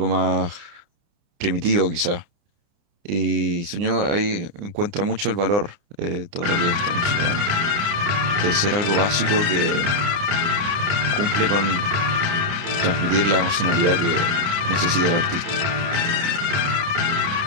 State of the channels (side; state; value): left; late; 29 ms